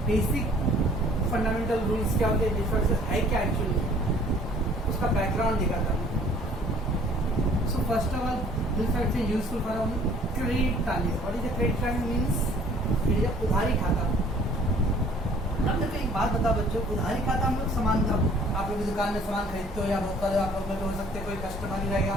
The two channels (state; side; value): normal; both; correlation 0.55